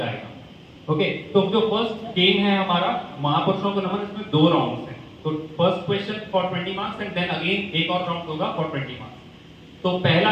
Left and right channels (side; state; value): both; identical; correlation 1.00